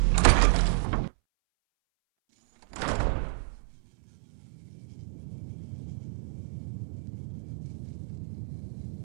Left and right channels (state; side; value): silent; left; 58 dB below the other